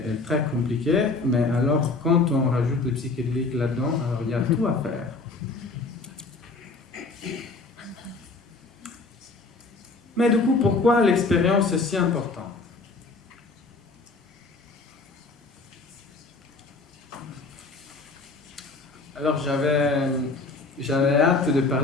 très compliqué, mais alors quand on rajoute le psychédélique là-dedans, alors il y a tout à faire. Mais du coup, pourquoi l'expérience est si importante? Alors j'avais hâte de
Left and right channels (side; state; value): right; quieter; 3.7 dB